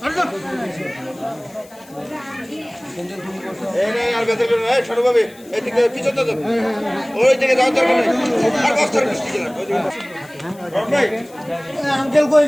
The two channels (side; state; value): left; noise; hiss, 25 dB below the sound